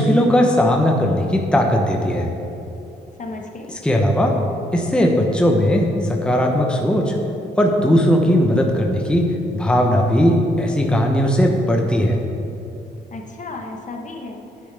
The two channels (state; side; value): normal; both; correlation 0.77